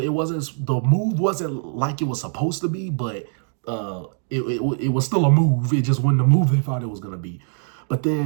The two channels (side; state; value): left; silent; digital silence